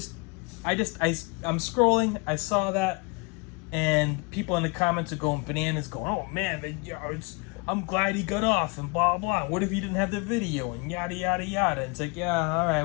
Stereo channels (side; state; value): right; quieter; 28.9 dB